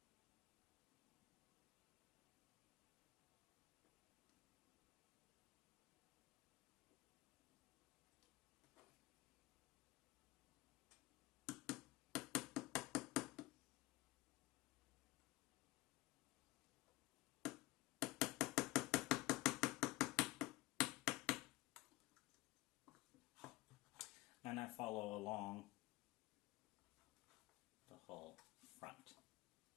And I follow along the whole front.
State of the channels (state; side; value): quieter; right; 19.8 dB